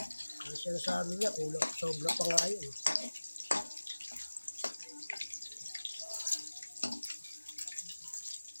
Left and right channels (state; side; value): inverted; both; correlation -1.00